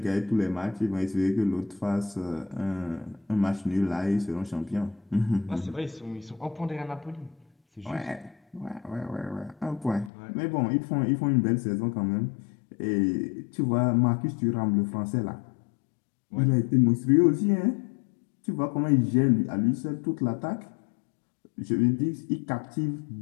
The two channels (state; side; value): drops out; right; at 10.1 s